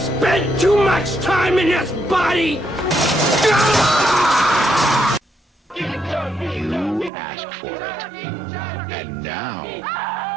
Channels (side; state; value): left; drops out; at 7.1 s